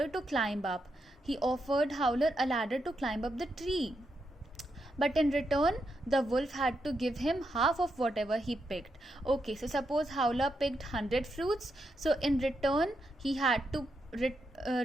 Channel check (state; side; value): normal; both; correlation 0.82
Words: to climb up. He offered Howler a ladder to climb up the tree. But in return, the wolf had to give him half of whatever he picked. Okay, so suppose Howler picked 100 fruits. So in return, he had to